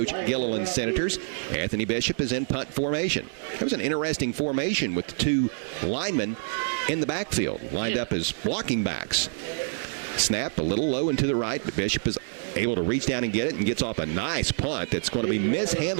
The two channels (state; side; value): silent; left; digital silence